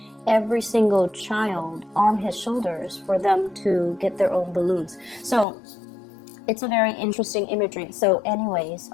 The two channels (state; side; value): drops out; right; at 5.5 s